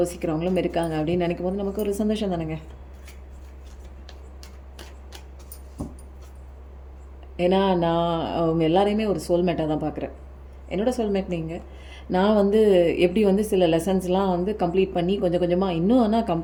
இருக்காங்க அப்படின்னு நினைக்கும் போது நமக்கு ஒரு சந்தோஷம் தானேங்க. ஏன்னா நான் அவங்க எல்லாரையுமே ஒரு சோல்மேட்டாக தான் பார்க்குறேன். என்னோடய சோல்மேட் நீங்கள். நான் வந்து எப்படி வந்து சில லெசன்ஸ்லாம் வந்து கம்ப்ளீட் பண்ணி கொஞ்சம் கொஞ்சமாக இன்னும் ஆனால்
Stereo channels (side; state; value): both; identical; correlation 1.00